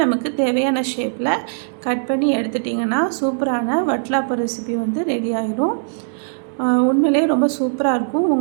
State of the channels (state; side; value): silent; left; digital silence